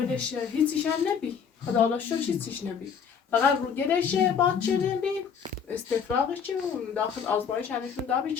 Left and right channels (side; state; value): right; quieter; 6.8 dB